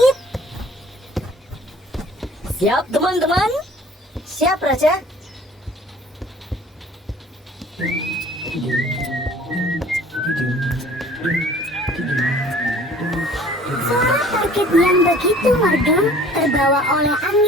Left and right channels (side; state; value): both; normal; correlation 0.51